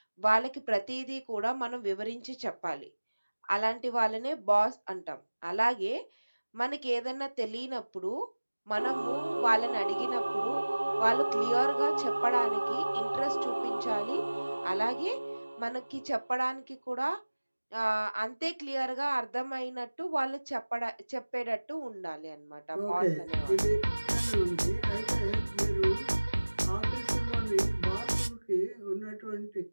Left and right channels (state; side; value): inverted; both; correlation -1.00